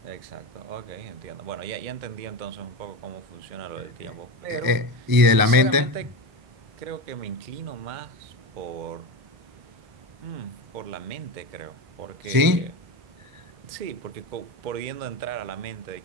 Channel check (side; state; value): left; late; 1.0 ms